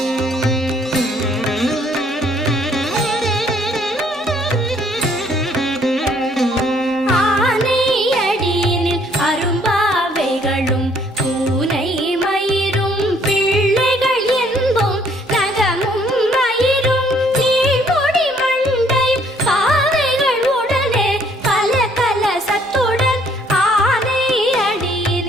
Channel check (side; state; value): both; normal; correlation 0.64